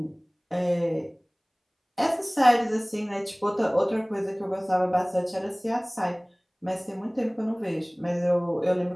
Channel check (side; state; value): both; identical; correlation 1.00